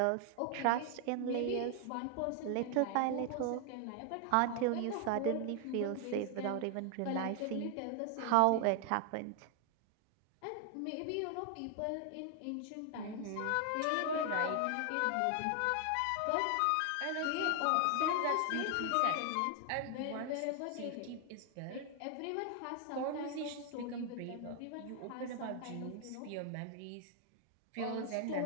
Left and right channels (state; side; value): different; both; correlation 0.00